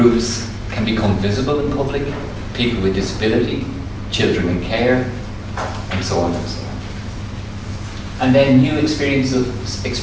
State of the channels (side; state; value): both; identical; correlation 1.00